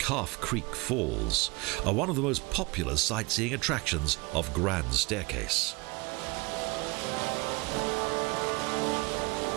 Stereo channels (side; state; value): left; quieter; 26.4 dB